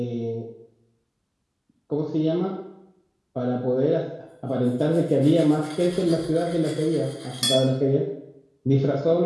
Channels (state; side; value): identical; both; correlation 1.00